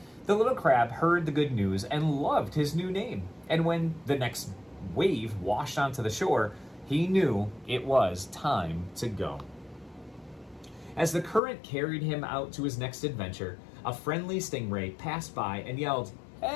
The little crab heard the good news and loved his new name. And when the next wave washed onto the shore, he knew it was time to go. As the current carried him out to his next adventure, a friendly stingray passed by and yelled,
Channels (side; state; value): right; drops out; at 11.4 s